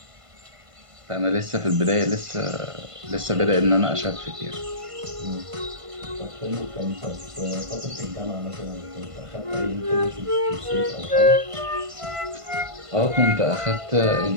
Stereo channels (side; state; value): left; late; 1.5 ms